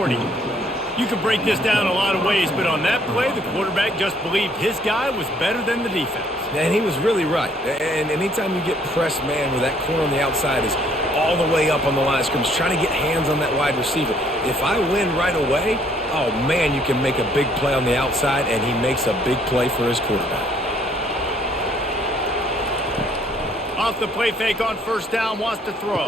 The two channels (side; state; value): both; normal; correlation 0.64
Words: You can break this down a lot of ways, but on that play, the quarterback just believed his guy was better than the defense. And he was really right. And anytime you get pressed man where that corner on the outside is all the way up on the line of scrimmage, trying to get hands on that wide receiver. If I win right away, oh man, you can make a big play on the outside, and he makes a big play for his quarterback. Off the play fake on first down, wants to throw.